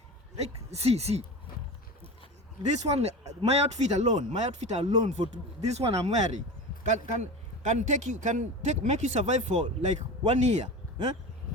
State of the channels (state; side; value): normal; both; correlation 0.30